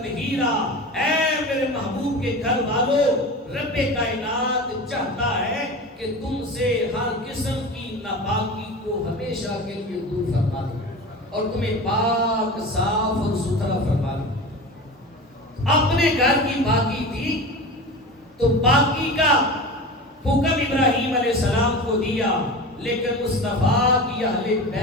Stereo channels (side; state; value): both; normal; correlation 0.31